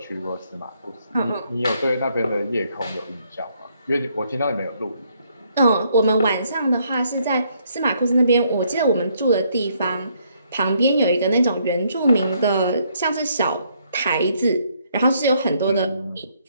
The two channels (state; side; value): inverted; both; correlation -0.71